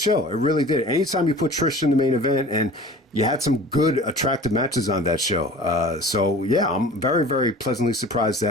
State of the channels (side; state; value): both; normal; correlation 0.42